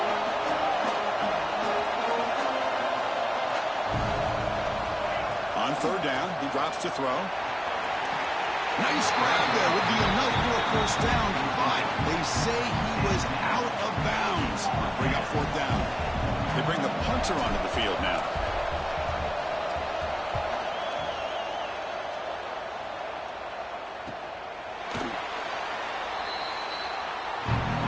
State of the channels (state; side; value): identical; both; correlation 1.00